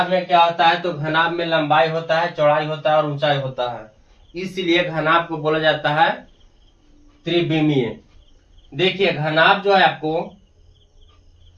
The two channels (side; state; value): both; identical; correlation 1.00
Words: में क्या होता है, तो घनाभ में लंबाई होता है, चौड़ाई होता है और ऊंचाई होता है, इसलिए घनाभ को बोला जाता है त्रिविमीय। देखिए घनाभ जो है आपको